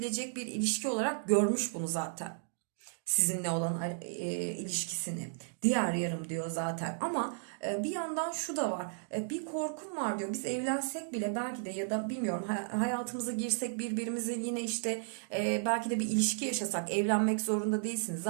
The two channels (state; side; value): silent; left; digital silence